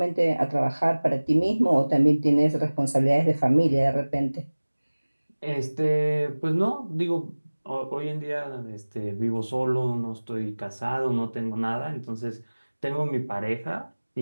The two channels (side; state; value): both; inverted; correlation -1.00